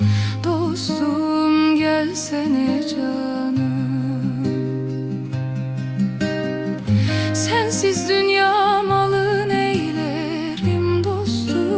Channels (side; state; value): both; identical; correlation 1.00